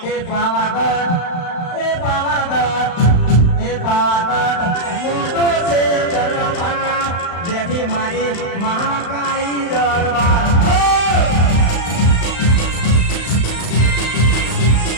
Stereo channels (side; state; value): right; late; 35 ms